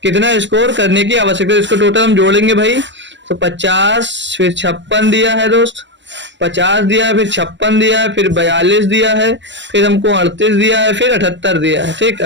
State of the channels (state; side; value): late; left; 0.53 ms